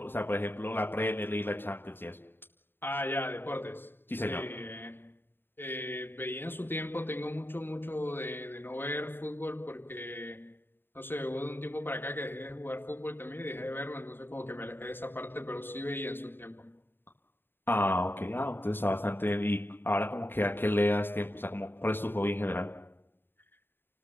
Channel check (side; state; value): right; late; 0.099 ms